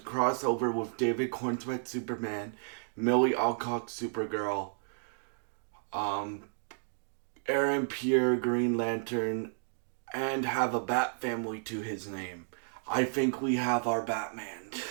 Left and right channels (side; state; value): left; silent; digital silence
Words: over with David Cornsweet Superman, Millie Alcock Supergirl, um, Aaron Pierre Green Lantern, and have a Bat family to his name. I think we have our Batman.